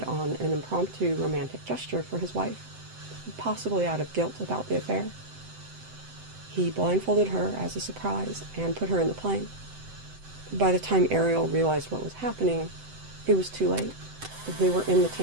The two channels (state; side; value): late; left; 7.8 ms